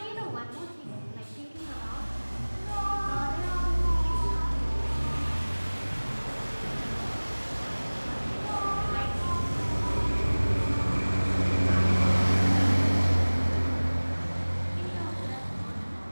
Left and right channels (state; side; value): inverted; both; correlation -1.00